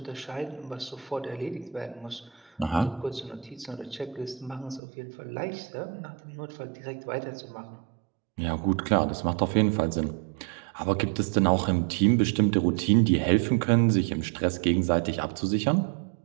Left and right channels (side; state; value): left; drops out; at 4.8 s